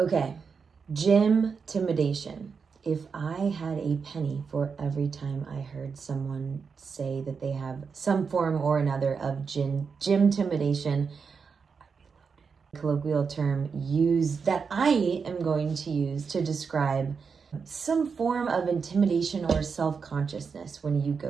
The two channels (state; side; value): quieter; left; 5.6 dB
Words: gym-timidation. If I had a penny for every time I heard someone say that they have some form or another of gym-timidation, colloquial term that I am going to use to describe some form of intimidation or self-consciousness when you